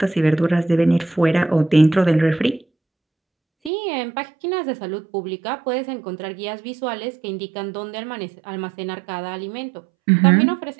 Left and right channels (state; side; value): drops out; left; at 3.7 s